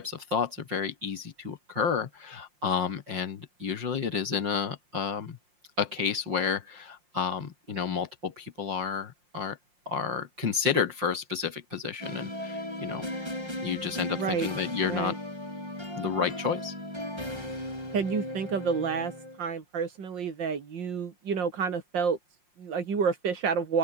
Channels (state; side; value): late; left; 5.6 ms